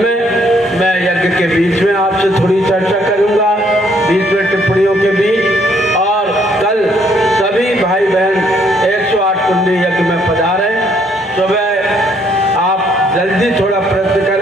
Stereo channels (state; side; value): normal; both; correlation 0.68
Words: मैं यज्ञ के बीच में आपसे थोड़ी चर्चा करूंगा, बीच में टिप्पणियों के बीच। और कल सभी भाई बहन 108 कुंडी यज्ञ में पधारें। सुबह आप जल्दी थोड़ा प्रयत्न